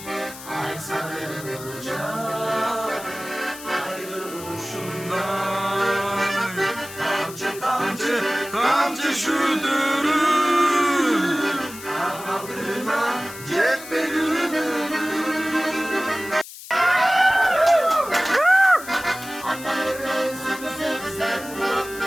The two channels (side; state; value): left; noise; hiss, 14 dB below the sound